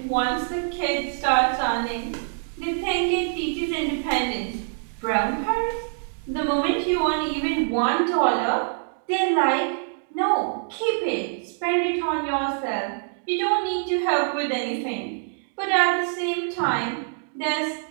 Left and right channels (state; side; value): silent; left; digital silence